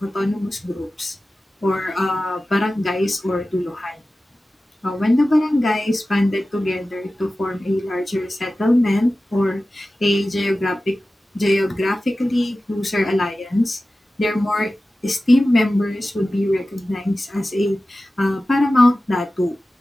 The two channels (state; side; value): normal; both; correlation 0.95